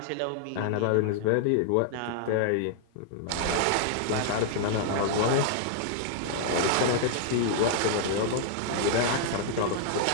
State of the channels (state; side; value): different; both; correlation -0.01